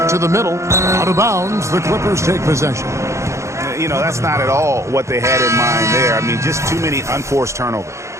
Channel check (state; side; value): late; left; 0.14 ms